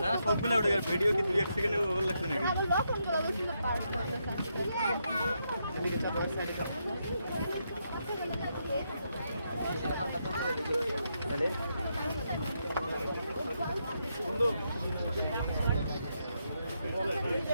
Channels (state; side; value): inverted; both; correlation -0.80